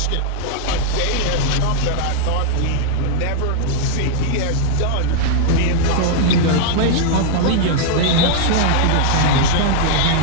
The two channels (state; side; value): different; both; correlation -0.01